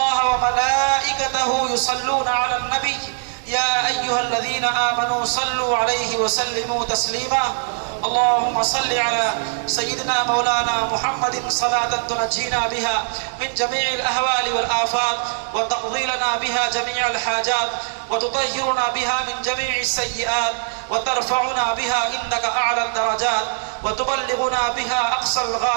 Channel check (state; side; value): silent; left; 64 dB below the other